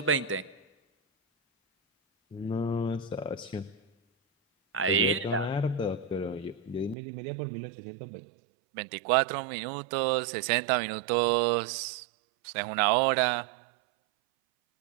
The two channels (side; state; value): left; drops out; at 7.0 s